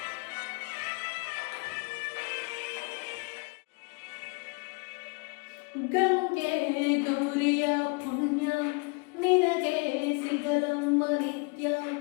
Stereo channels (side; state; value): right; quieter; 32.3 dB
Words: ಗಂಗೆ ಗೌರಿಯ ಪುಣ್ಯ ನಿನಗೆ ಸಿಗಲಮ್ಮ ನಿತ್ಯ